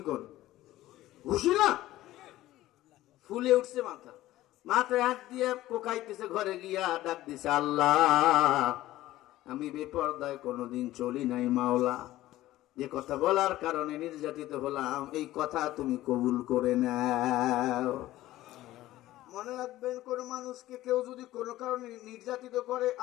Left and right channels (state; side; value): quieter; right; 15.6 dB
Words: করেন? ঘুষি না, ফুলে উঠছে মাথা। মাথায় হাত দিয়ে কোকাইতেছে। ঘরে গিয়া ডাক দিছে, আল্লাহ, আমি বেপরদায় কোনোদিন চলি নাই মাওলা, যে কথা বলার কারণে নির্যাতিত হলাম, এই কথা তুমি কবুল করে নাও। মনে রাখবেন, কোন মানুষকে কেউ যদি কোনো কারণে নির্যাতিত করে,